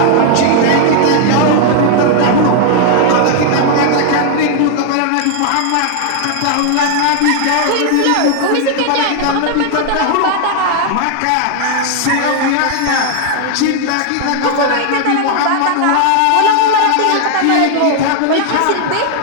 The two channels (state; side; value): different; both; correlation 0.00